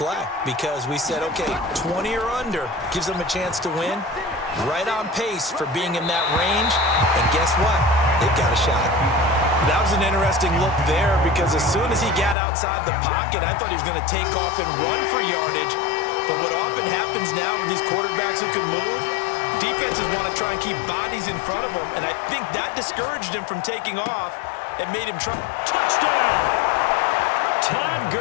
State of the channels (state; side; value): drops out; right; at 12.4 s